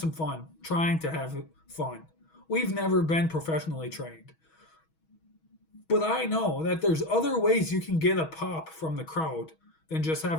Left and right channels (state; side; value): late; right; 6.3 ms